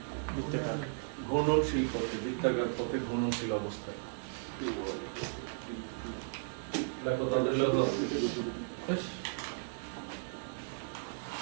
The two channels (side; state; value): left; silent; digital silence